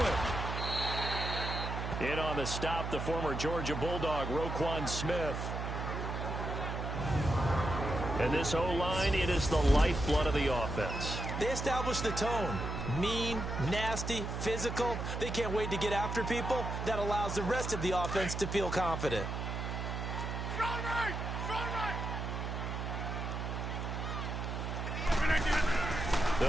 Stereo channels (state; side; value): noise; right; hum, 3 dB below the sound